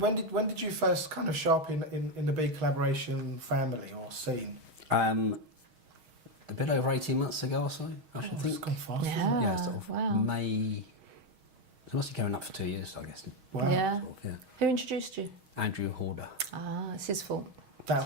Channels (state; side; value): late; left; 6.4 ms